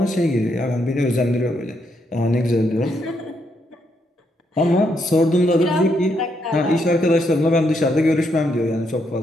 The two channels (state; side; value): normal; both; correlation 0.77